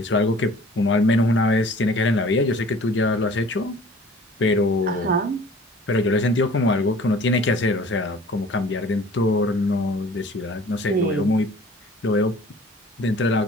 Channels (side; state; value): both; normal; correlation 0.49